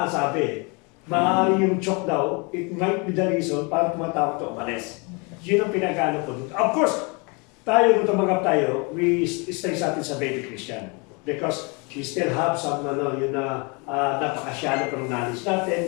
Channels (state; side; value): quieter; right; 30.8 dB